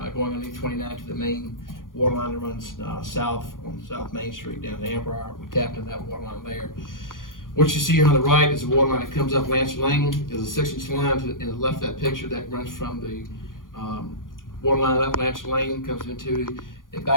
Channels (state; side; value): late; right; 0.90 ms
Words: going underneath 29 to the main water line that runs south on South Main Street down to Amber. We tapped in that water line there. What you see here on the right is the water line that comes up Lancer Lane. There's a 6-inch line to the left of that picture that runs from the water line up Lancer Lane, comes into a